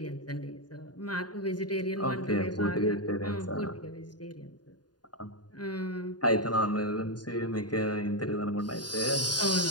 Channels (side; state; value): right; late; 0.70 ms